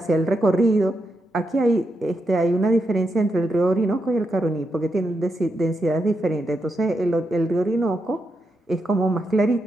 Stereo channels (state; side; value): normal; both; correlation 0.84